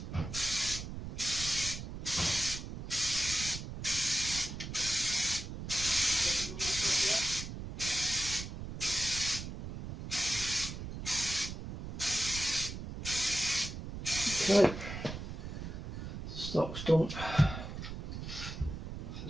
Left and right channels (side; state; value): right; noise; rumble, 8 dB below the sound